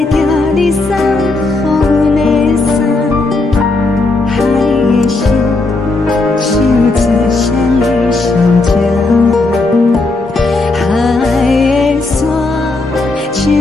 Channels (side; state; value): right; quieter; 3.2 dB